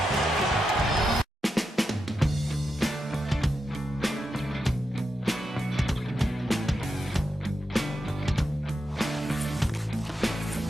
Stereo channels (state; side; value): normal; both; correlation 0.87